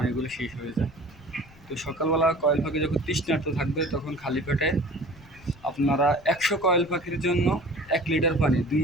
শেষ হয়ে যায়। তো সকালবেলা কয়েল পাখি যখন তৃষ্ণার্ত থাকবে, তখন খালি পেটে আপনারা 100 কয়েল পাখির জন্য 1 লিটার পানি 2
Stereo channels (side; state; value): left; noise; rumble, 25 dB below the sound